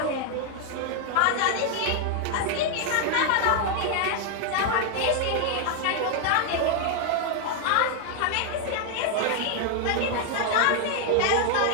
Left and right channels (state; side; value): different; both; correlation 0.00